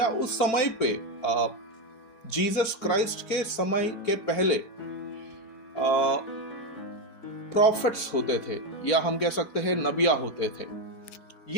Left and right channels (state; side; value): late; right; 4.5 ms